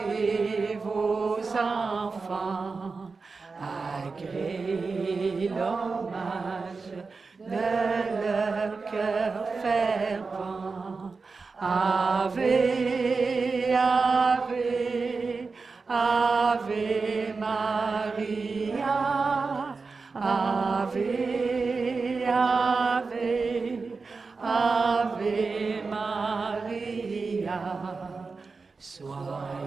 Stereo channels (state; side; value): quieter; left; 4.4 dB